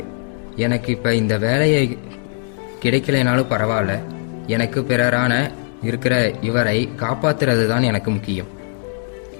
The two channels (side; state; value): right; silent; 66 dB below the other